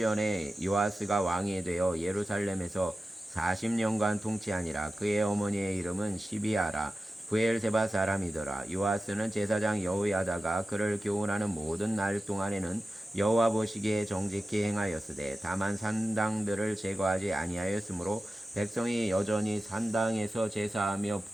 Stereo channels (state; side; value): normal; both; correlation 0.94